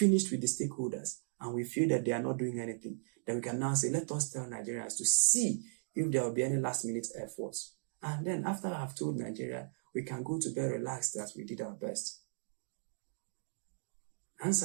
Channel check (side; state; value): left; silent; digital silence